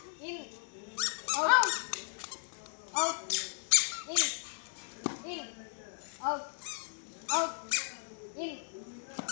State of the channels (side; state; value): right; silent; 54 dB below the other